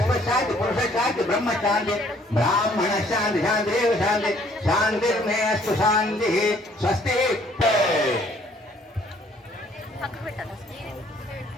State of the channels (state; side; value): normal; both; correlation 0.61